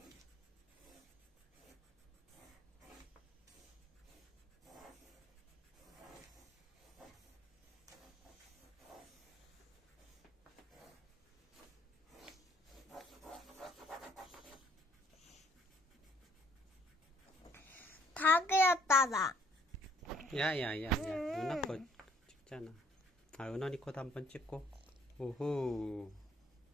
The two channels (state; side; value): normal; both; correlation 0.63